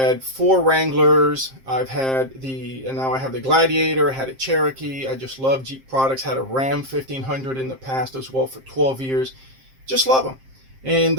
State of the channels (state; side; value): late; left; 7.6 ms